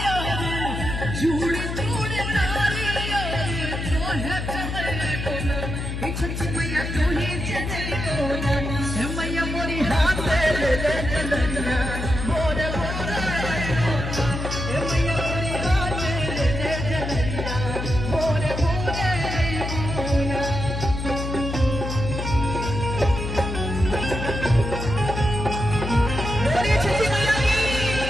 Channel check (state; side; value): noise; left; hum, 4 dB below the sound